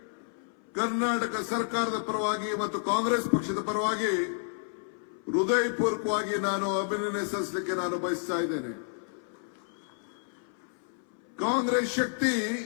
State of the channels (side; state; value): right; silent; 58 dB below the other